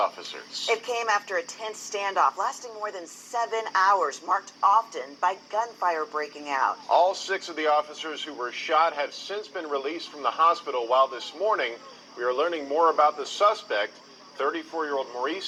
It came after a tense standoff lasting more than 7 hours, marked often by gunfire breaking out. All 6 of the officers who were shot have since been released from the hospital, while this morning we are learning more about the suspect, 34-year-old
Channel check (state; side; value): identical; both; correlation 1.00